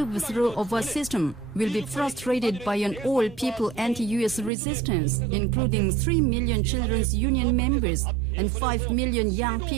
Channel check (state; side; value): drops out; left; at 4.5 s